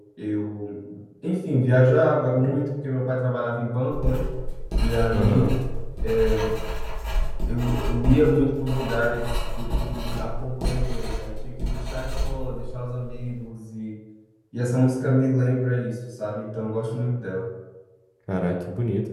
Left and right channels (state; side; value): identical; both; correlation 1.00